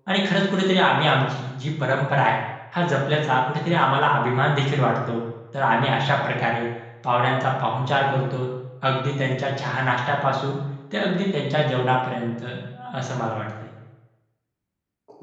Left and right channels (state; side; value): identical; both; correlation 1.00